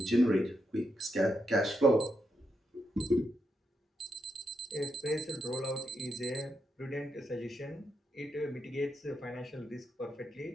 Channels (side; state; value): both; normal; correlation 0.82